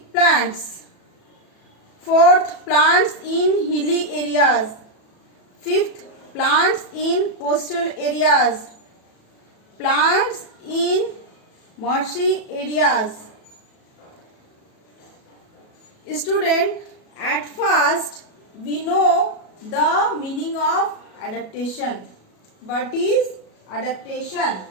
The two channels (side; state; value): right; late; 37 ms